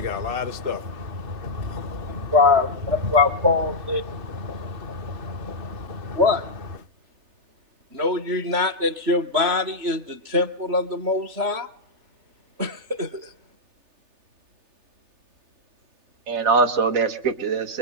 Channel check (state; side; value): late; left; 3.3 ms